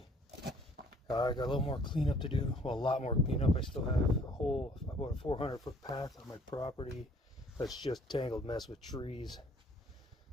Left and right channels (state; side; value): normal; both; correlation 0.58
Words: I got a little more cleanup to do. Well, a lot more cleanup. I still have about a 400-foot path on my property that's just tangled mess with trees.